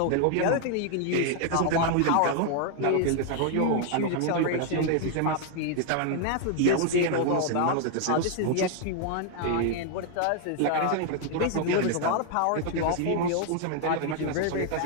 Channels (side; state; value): both; different; correlation 0.00